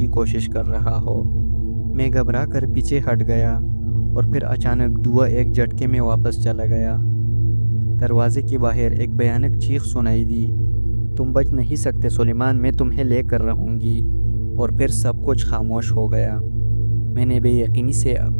کوشش کر رہا ہو۔ میں گھبرا کر پیچھے ہٹ گیا اور پھر اچانک دھواں ایک جھٹکے میں واپس چلا گیا۔ دروازے کے باہر ایک بھیانک چیخ سنائی دی، تم بچ نہیں سکتے سلیمان، میں تمہیں لے کر رہوں گی۔ اور پھر سب کچھ خاموش ہو گیا۔ میں نے بے یقینی سے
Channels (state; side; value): inverted; both; correlation -1.00